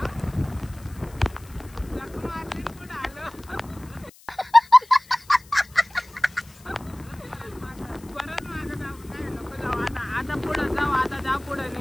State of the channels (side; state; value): left; noise; hiss, 25 dB below the sound